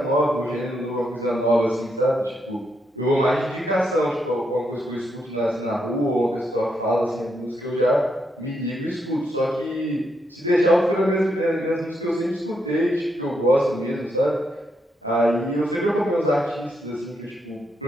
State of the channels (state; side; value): normal; both; correlation 0.79